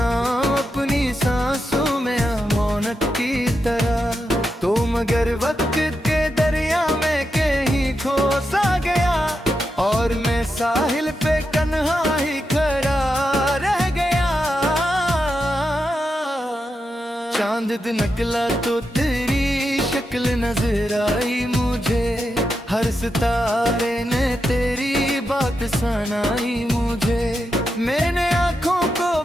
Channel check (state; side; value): normal; both; correlation 0.87